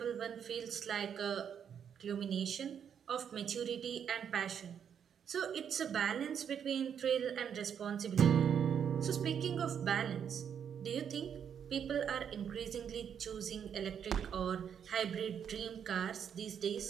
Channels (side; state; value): left; quieter; 8.1 dB